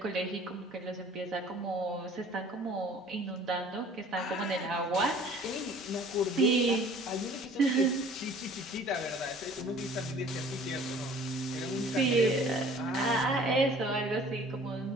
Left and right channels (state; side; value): normal; both; correlation 0.50